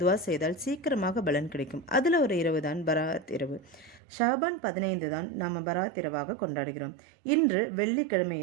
துவா செய்தால் சீக்கிரமாக பலன் கிடைக்கும். அதில் ஒரு இரவு தான் பராத் இரவு. ஷாபான் 15 தான் நாம் பராத் இரவாக கொண்டாடுகிறோம். இன்று வெள்ளிக்கிழமை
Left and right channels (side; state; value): left; drops out; at 4.0 s